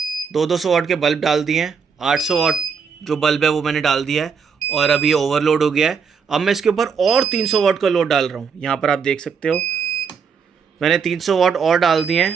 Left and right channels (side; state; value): left; quieter; 6.1 dB